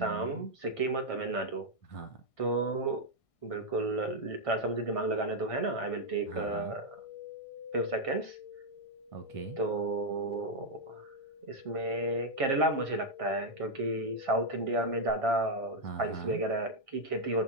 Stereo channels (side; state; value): right; late; 1.6 ms